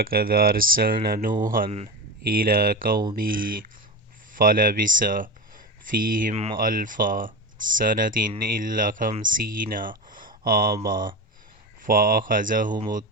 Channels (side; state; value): both; normal; correlation 0.22